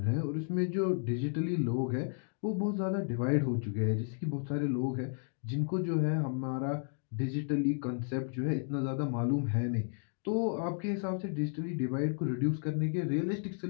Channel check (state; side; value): silent; right; 56 dB below the other